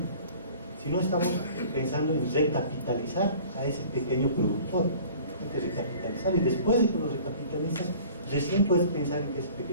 sino estamos pensando en recapitalizar a ese pequeño productor. Hay que recapitalizar, y después de que lo recapitalizas, recién puedes pensar en que ese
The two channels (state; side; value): inverted; both; correlation -0.47